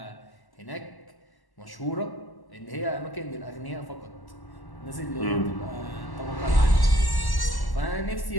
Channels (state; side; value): late; right; 1.1 ms